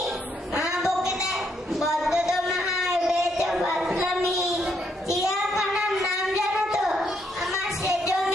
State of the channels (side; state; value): both; normal; correlation 0.74